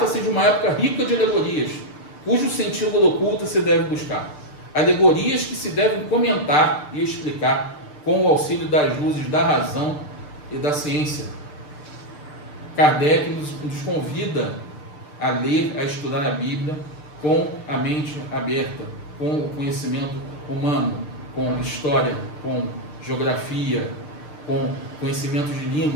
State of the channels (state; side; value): late; right; 6.7 ms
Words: de uma época rica de alegorias, cujo sentido oculto se deve buscar. Alegorias que se devem comentar e explicar com o auxílio das luzes da razão e da ciência. Kardec nos convida a ler, a estudar a Bíblia com a mente aberta, com o conhecimento humano, com história, com geografia, com conhecimento de